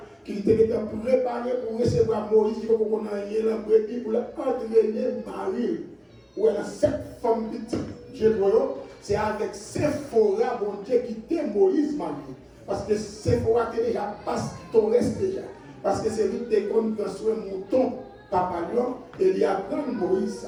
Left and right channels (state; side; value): identical; both; correlation 1.00